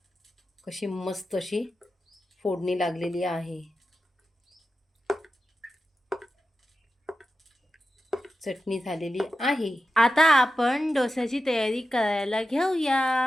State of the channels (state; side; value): normal; both; correlation 0.91